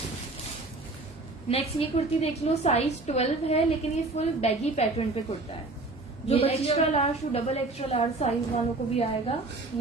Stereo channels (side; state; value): left; quieter; 3.2 dB